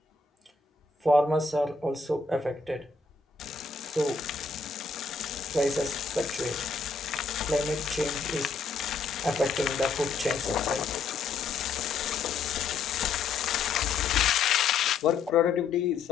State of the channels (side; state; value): right; quieter; 4.7 dB